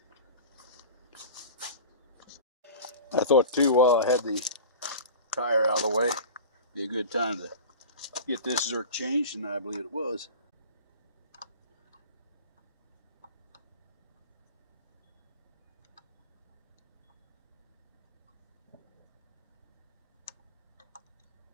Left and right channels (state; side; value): inverted; both; correlation -0.35